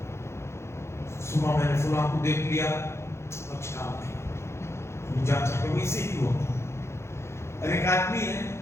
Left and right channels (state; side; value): late; right; 0.13 ms